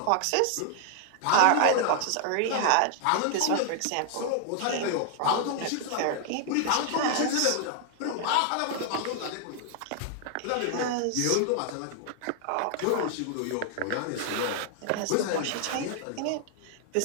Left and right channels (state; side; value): different; both; correlation 0.00